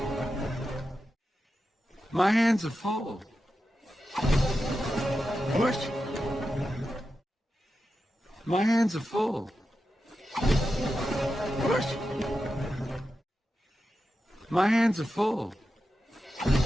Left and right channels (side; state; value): both; normal; correlation 0.90